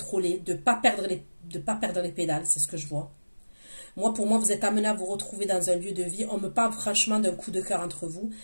de pas perdre les pédales. C'est ce que je vois. Moi, pour moi, vous êtes amené à vous retrouver dans un lieu de vie. On me parle franchement d'un coup de cœur entre vous.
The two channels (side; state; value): both; inverted; correlation -1.00